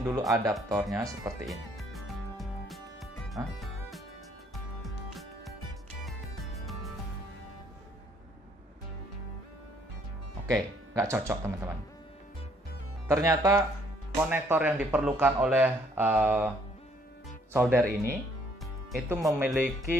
dulu adaptornya seperti ini. Oke, nggak cocok teman-teman. Ternyata konektor yang diperlukan oleh solder ini itu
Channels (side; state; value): both; normal; correlation 0.65